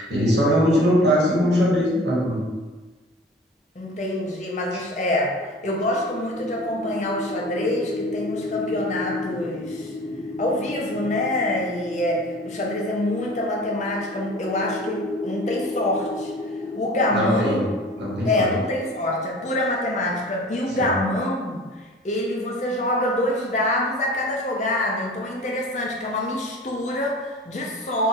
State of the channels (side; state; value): both; normal; correlation 0.41